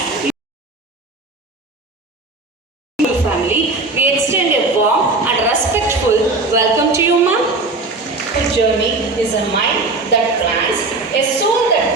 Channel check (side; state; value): left; quieter; 3.3 dB